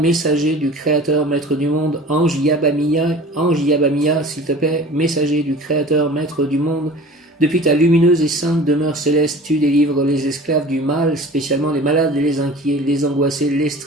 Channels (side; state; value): both; normal; correlation 0.42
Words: du Créateur, Maître du monde. Ange Yabamia, s'il te plaît, messager du Créateur, Maître du monde. Depuis ta lumineuse et sainte demeure céleste, tu délivres les esclaves du mal, spécialement les malades, les inquiets, les angoissés, les